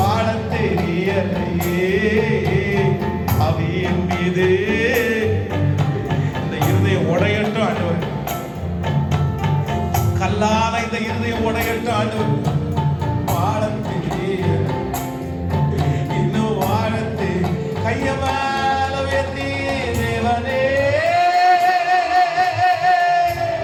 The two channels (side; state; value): both; identical; correlation 1.00